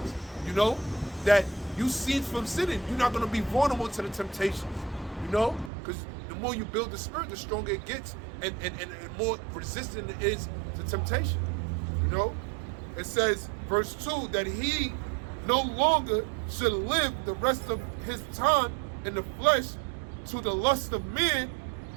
you know, that you cease from sinning. You're not going to be vulnerable to the temptations, you know, because the more you build the spirit, the stronger it gets and more resistant it is to temptation, you know. It says, verse 2, that he no longer should live the rest of his time in the flesh to the lust of men,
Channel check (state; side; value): drops out; left; at 5.7 s